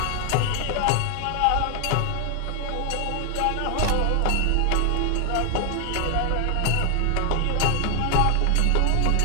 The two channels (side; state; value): both; different; correlation 0.00